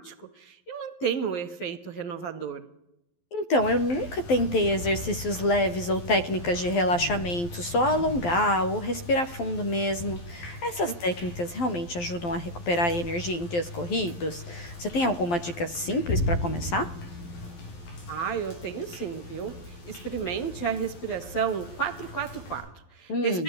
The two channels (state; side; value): late; right; 12 ms